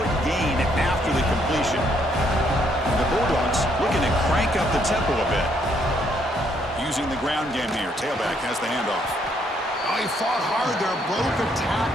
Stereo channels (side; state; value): both; normal; correlation 0.70